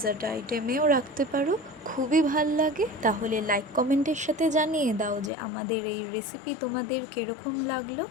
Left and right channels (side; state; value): right; drops out; at 5.3 s